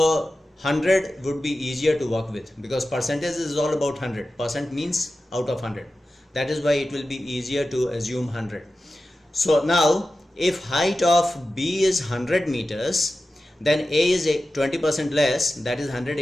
100 would be easier to work with because percentage is all about 100. Percent means out of 100. That is why it will be easier to assume 100. So now if height of B is 100 meters, then A is 20% less, that is 100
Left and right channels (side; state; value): both; normal; correlation 0.93